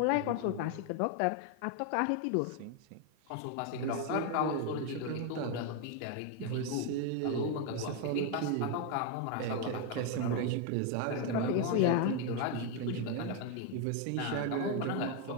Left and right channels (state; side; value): different; both; correlation 0.01